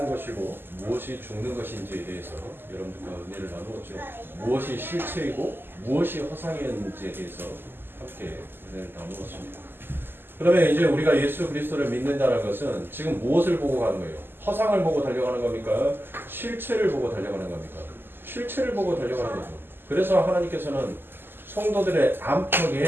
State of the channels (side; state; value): left; late; 0.099 ms